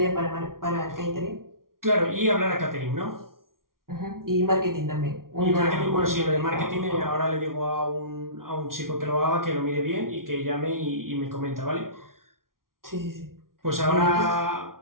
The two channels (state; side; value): late; left; 0.92 ms